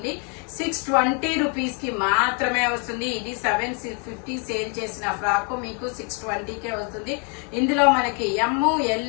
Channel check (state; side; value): quieter; right; 35.5 dB